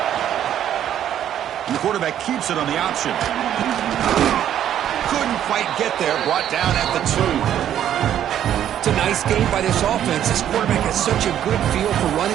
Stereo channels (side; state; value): left; quieter; 10.6 dB